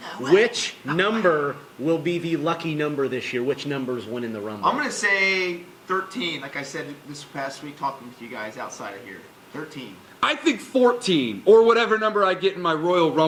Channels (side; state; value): both; identical; correlation 1.00